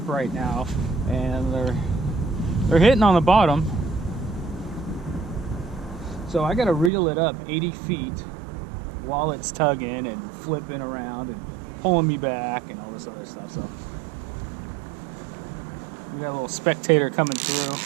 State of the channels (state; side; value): drops out; left; at 6.9 s